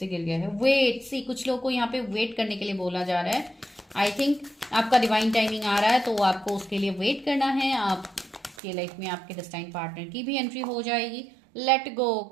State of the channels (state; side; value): drops out; left; at 8.6 s